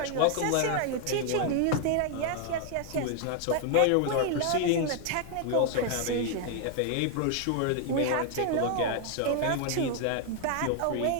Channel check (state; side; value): different; both; correlation 0.00